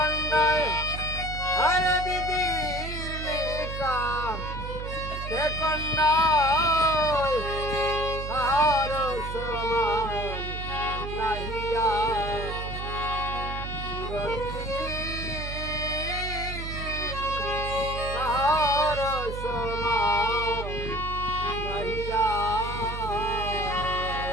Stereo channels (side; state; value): right; noise; hum, 6 dB below the sound